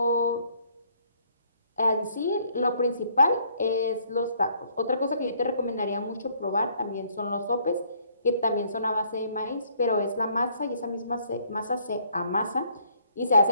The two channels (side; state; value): both; inverted; correlation -0.65